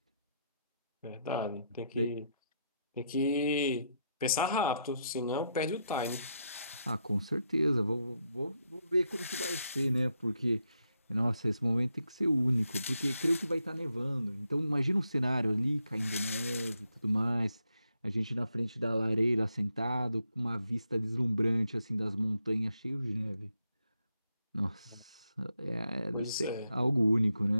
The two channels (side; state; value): both; inverted; correlation -0.80